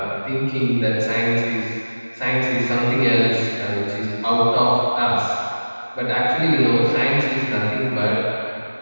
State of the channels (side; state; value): both; inverted; correlation -1.00